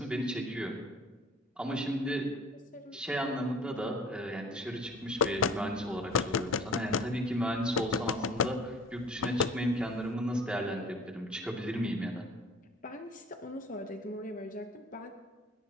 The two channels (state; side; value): normal; both; correlation 0.47